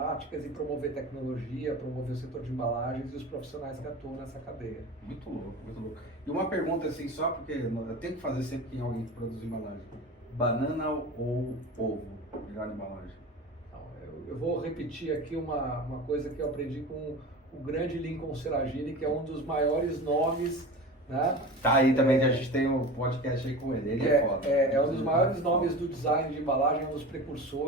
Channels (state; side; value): normal; both; correlation 0.32